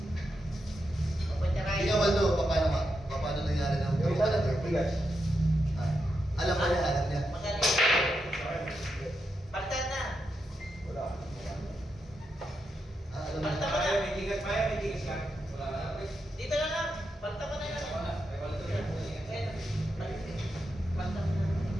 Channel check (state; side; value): normal; both; correlation 0.85